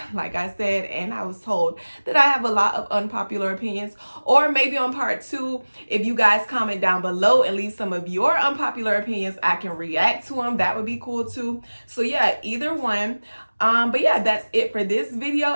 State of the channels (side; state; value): both; inverted; correlation -1.00